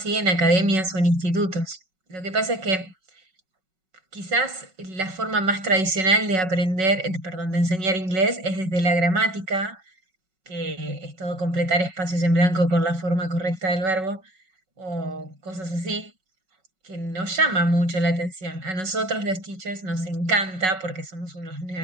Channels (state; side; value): late; left; 5.4 ms